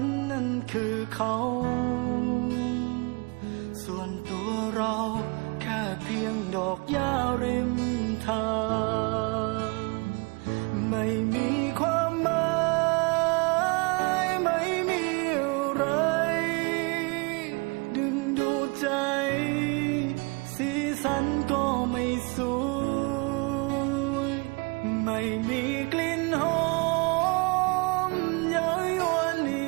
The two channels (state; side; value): quieter; left; 29.4 dB